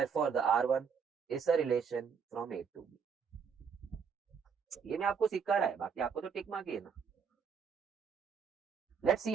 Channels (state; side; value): quieter; left; 6.4 dB